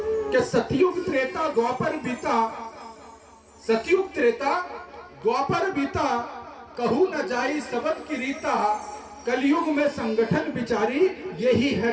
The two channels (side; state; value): both; identical; correlation 1.00